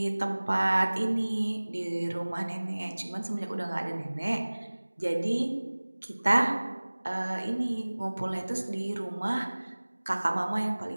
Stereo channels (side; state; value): both; inverted; correlation -1.00